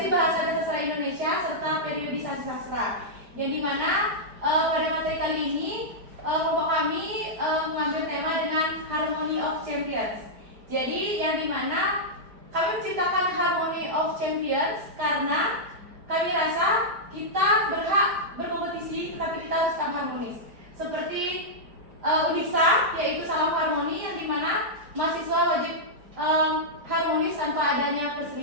bahasa dan sastra Indonesia serta periodisasi sastra. Yang dimana pada materi kali ini kelompok kami mengambil tema dengan Harmony of Champions. Jadi yang dimana kami menciptakan Harmony of Champions karena kami rasa kita berhak berkompetisi tetapi kita harus tetap harmonis. Seperti UNISA yaitu salam harmoni yang dimana mahasiswa wajib harmonis tanpa adanya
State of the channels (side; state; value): left; late; 4.6 ms